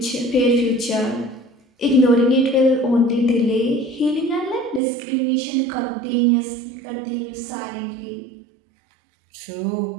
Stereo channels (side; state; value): left; drops out; at 4.8 s